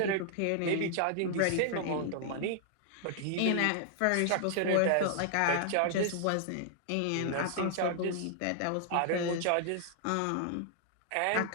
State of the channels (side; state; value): both; different; correlation -0.01